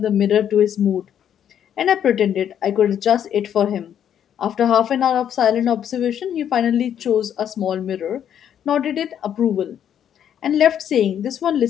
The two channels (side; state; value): right; quieter; 9.5 dB